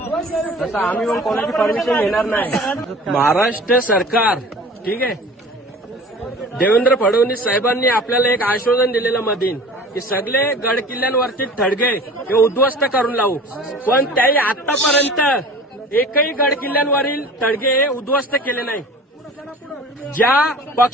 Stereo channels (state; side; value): normal; both; correlation 0.42